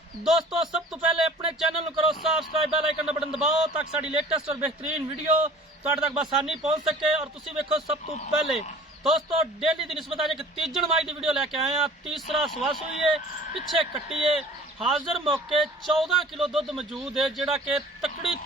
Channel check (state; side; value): normal; both; correlation 0.47